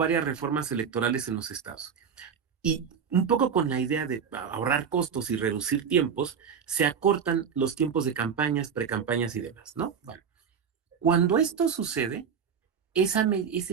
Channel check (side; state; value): left; quieter; 7.0 dB